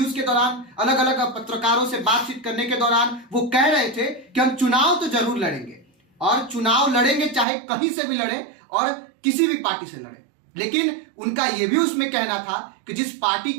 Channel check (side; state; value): left; drops out; at 7.5 s